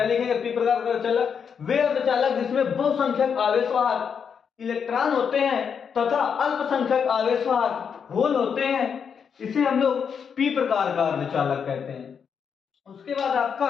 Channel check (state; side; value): quieter; right; 6.9 dB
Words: लिखेंगे, पी प्रकार का अर्धचालक, वे अर्धचालक जिसमें बहुसंख्यक आवेशवाहक इलेक्ट्रॉन होते हैं तथा अल्पसंख्यक आवेशवाहक होल होते हैं, इसे हम लोग पी प्रकार का अर्धचालक कहते हैं। उसके बाद आपका